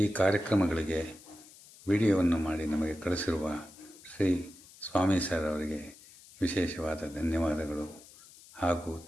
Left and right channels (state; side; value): noise; left; hiss, 22 dB below the sound